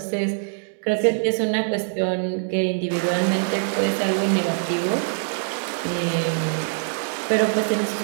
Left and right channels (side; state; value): left; silent; digital silence